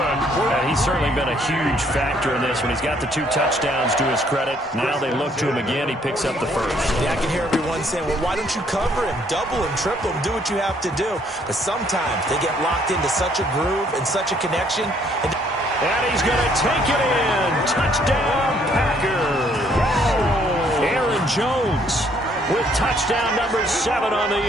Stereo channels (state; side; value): normal; both; correlation 0.65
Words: And he's certainly been a huge factor in this one. He's got the 2 touchdowns to his credit. Now they look to him again. He picks up the 1st. Yeah, I can hear everyone saying, well, why don't you cover him, double him, triple him, do what you have to do. But sometimes they get locked into such a groove and such a connection. And he's going to take it in. Touchdown, Packers. Aaron Jones with touchdown number 7 on the